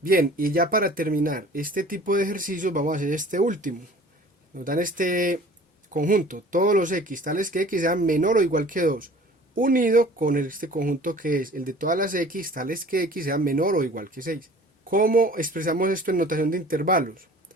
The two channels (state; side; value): normal; both; correlation 0.47